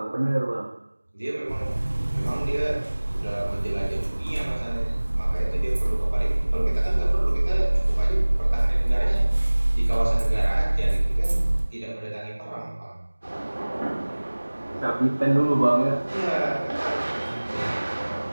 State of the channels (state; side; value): inverted; both; correlation -1.00